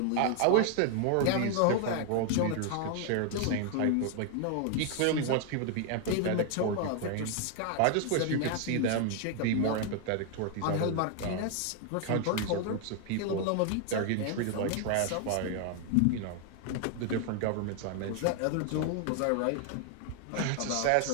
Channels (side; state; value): both; different; correlation 0.00